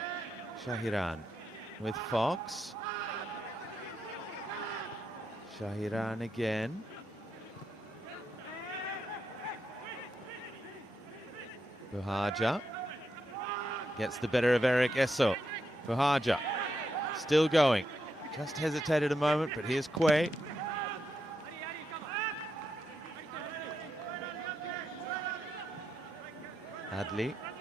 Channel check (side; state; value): both; normal; correlation 0.83